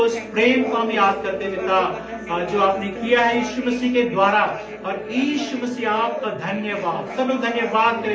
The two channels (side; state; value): both; identical; correlation 1.00